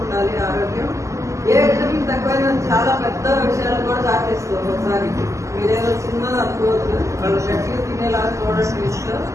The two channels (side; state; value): left; late; 0.15 ms